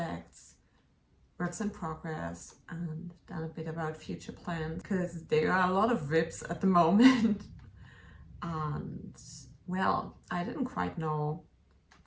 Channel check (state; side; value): identical; both; correlation 1.00